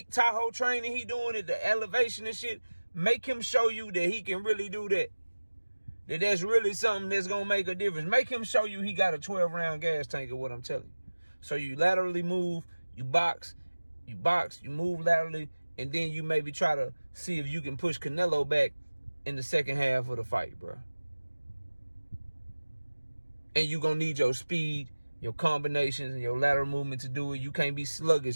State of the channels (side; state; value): both; inverted; correlation -1.00